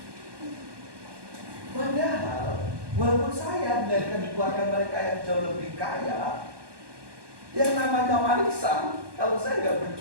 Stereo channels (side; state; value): left; late; 1.2 ms